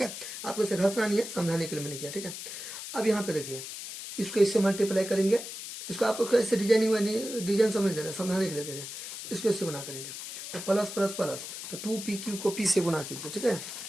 है। आपको इसे घसना नहीं है, समझाने के लिए मैंने किया, ठीक है। अब यहाँ पे देखिए, इसको इससे मल्टीप्लाई करेंगे, इसको आपको कैसे डिजाइनिंग में डिजाइन समझ दे रहे हैं, समझाने के लिए दे रहे हैं। इसको इससे गुना करेंगे तो प्लस प्लस प्लस, तो 2pq को p से गुना कीजिए, ठीक है।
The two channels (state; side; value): noise; left; hiss, 9 dB below the sound